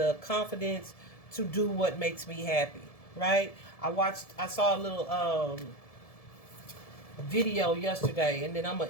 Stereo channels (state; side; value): late; right; 1.7 ms